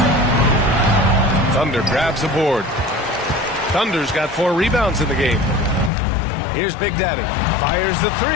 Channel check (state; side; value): drops out; right; at 5.9 s